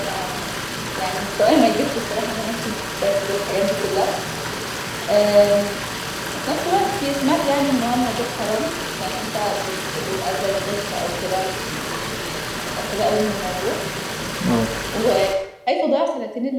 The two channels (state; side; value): identical; both; correlation 1.00